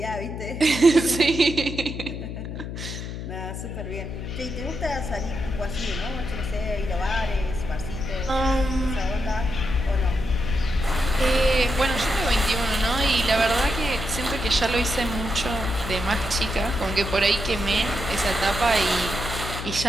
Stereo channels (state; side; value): noise; left; hum, 7 dB below the sound